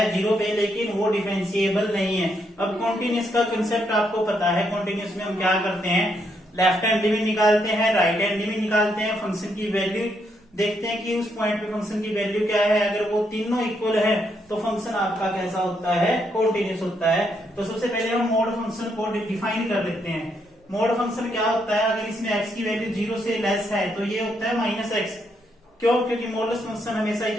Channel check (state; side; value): normal; both; correlation 0.77